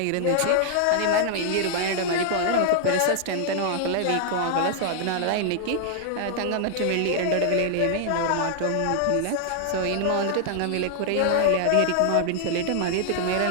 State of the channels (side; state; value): both; different; correlation 0.00